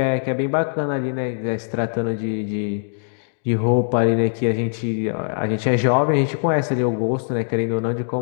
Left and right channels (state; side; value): silent; right; digital silence